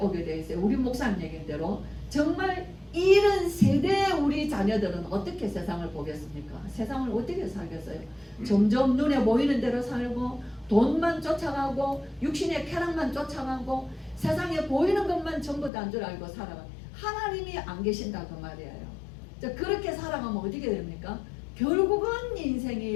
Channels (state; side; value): drops out; right; at 15.7 s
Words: 돼 있어요. 우리 목사님 얘기인 대로 정말 이런 세대의 우리 자녀들은 어떻게 세상을 보겠습니까? 세상을 어떻게 살겠어요? 점점 눈에 보이는 대로 살고 돈만 쫓아가고 육신의 쾌락만 쫓아가고 세상에 보이는 것만 전부 다 줄 알고 살아가. 하나님이 안 계신다 그 말이에요. 그렇게 살아가면 어떻게 됩니까? 결국은